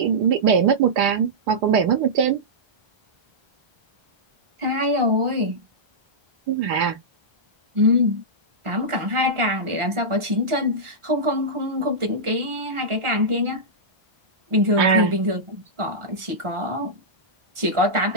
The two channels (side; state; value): left; late; 1.4 ms